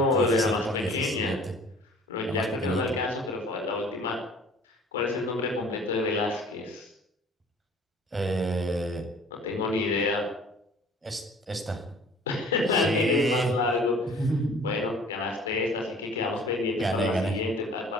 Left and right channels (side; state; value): both; normal; correlation 0.50